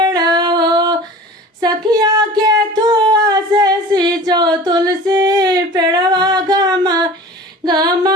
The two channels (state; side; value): normal; both; correlation 0.40